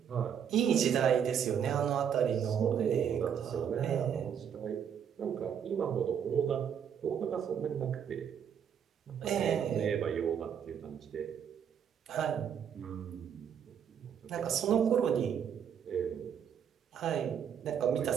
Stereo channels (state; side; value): quieter; left; 8.2 dB